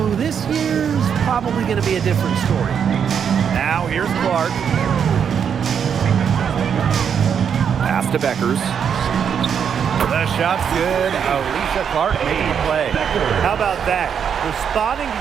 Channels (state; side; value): quieter; left; 7.6 dB